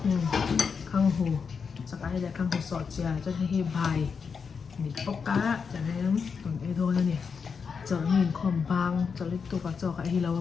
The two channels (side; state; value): right; quieter; 5.8 dB